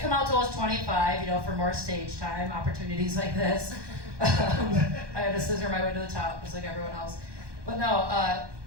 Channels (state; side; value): late; left; 1.2 ms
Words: come out till I was 25, for more stage time, opportunities like this. I had to scissor my way to the top, just like everyone else. But no, I